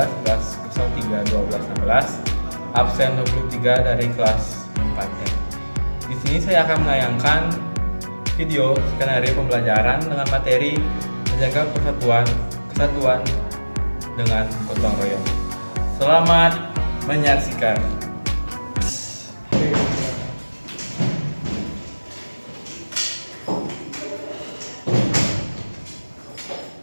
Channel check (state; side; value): inverted; both; correlation -1.00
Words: 2311031216, absen 23 dari kelas 4. Di sini saya akan menayangkan video skenario pembelajaran dengan materi menjaga kesatuan dengan gotong royong. Selamat menyaksikan.